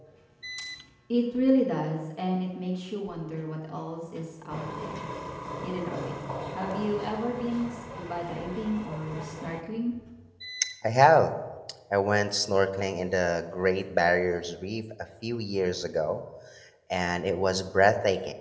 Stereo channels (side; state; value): both; identical; correlation 1.00